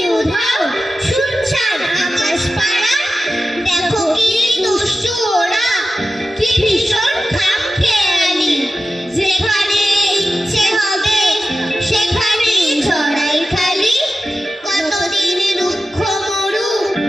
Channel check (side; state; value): both; normal; correlation 0.93